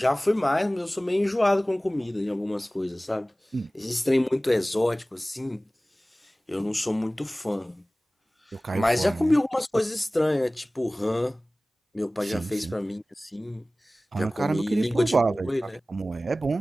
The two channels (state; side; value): normal; both; correlation 0.98